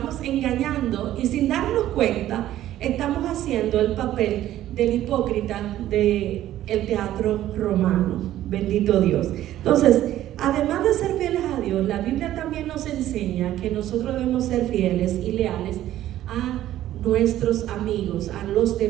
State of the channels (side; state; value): left; quieter; 13.2 dB